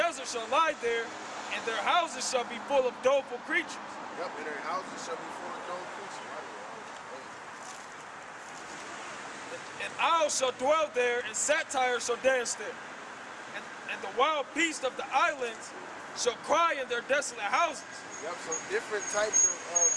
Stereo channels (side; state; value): both; identical; correlation 1.00